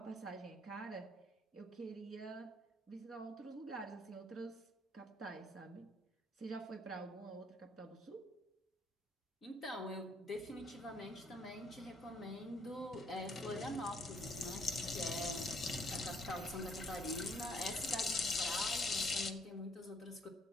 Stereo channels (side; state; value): both; normal; correlation 0.66